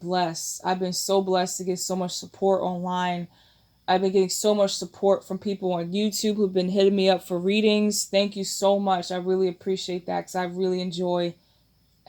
I've been so blessed to get so much support online. I've been getting so much support from people on YouTube who've been hitting me up for readings. Thank you so much. I really appreciate that because I really enjoy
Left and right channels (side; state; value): both; identical; correlation 1.00